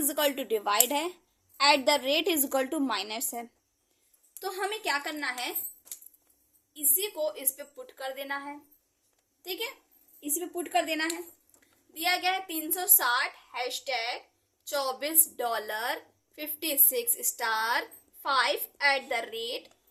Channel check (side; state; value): both; identical; correlation 1.00